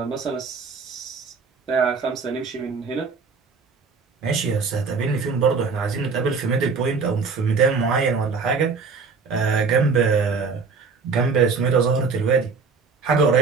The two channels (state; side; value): quieter; left; 4.9 dB